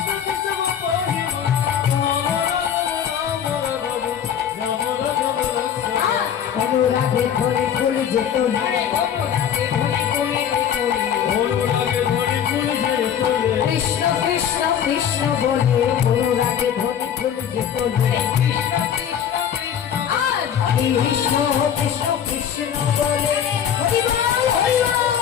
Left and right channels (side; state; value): right; quieter; 8.8 dB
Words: কেশব পাহি রাম রাঘব লক্ষ্মণ। অনুরাগে ধরে ফুল যেত না, অনুরাগে ধরে ফুল অনুরাগে ধরে ফুল যে তোলে, কৃষ্ণ কৃষ্ণ কৃষ্ণ বলে অনুরাগে ধরে যেত না। কৃষ্ণ কৃষ্ণ কৃষ্ণ বলে